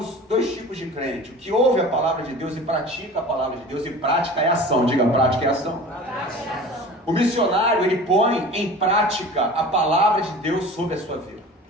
2 tipos de crente: o que ouve a palavra de Deus e pratica a palavra de Deus, e prática é ação. Diga, prática é ação. O missionário, ele põe em prática a palavra de Deus sobre a sua vida.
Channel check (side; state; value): both; normal; correlation 0.39